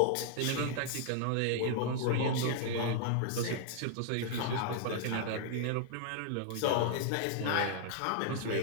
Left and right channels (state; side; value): different; both; correlation -0.01